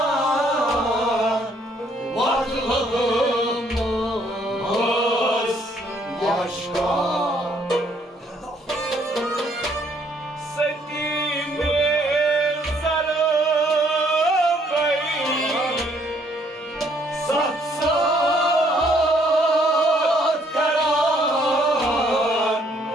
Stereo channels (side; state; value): both; normal; correlation 0.66